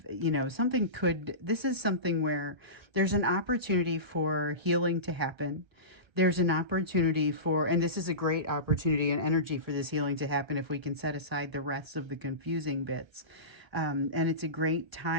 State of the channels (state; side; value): late; left; 1.3 ms